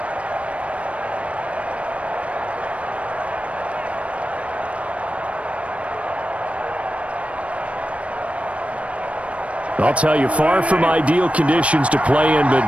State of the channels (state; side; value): late; left; 0.063 ms